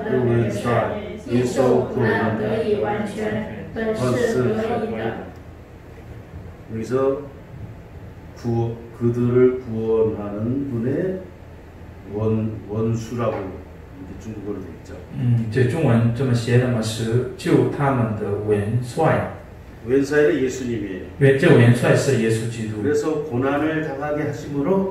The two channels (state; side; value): identical; both; correlation 1.00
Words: 的元帅因受苦难得以完全，本是合宜的。 여기서 그들을 구원하는 분의 원수라고 이렇게 중국어로 돼 있죠. 这中文这么写的嘛，是救他们的元帅。 웬사이는 예수님이에요. 这元帅是耶稣基督。 그래서 고난을 당하게